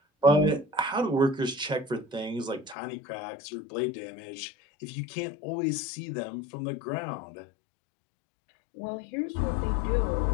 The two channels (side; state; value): right; drops out; at 2.8 s